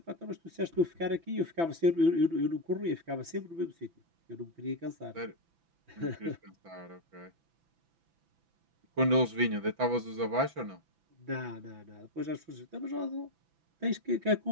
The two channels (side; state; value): left; late; 6.0 ms